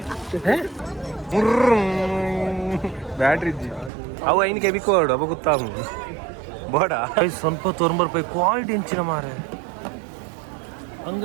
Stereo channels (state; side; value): drops out; left; at 3.9 s